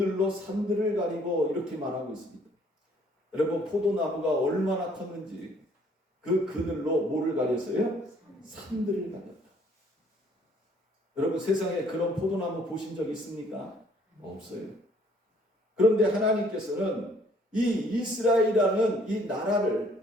산들을 가리고 이렇게 말하고 있습니다. 여러분, 포도나무가 얼마나 컸는지 그 그늘로 뭐를 가렸어요? 산들을 가렸다. 여러분, 세상에 그런 포도나무 보신 적 있습니까? 없어요. 그런데 하나님께서는 이 이스라엘이라는 이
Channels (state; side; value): normal; both; correlation 0.61